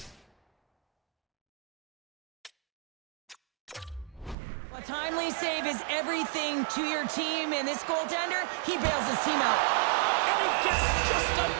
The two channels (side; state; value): left; drops out; at 4.4 s